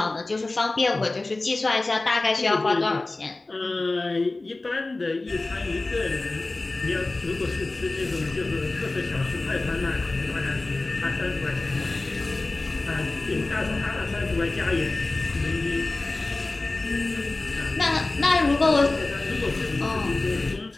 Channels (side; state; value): right; quieter; 3.1 dB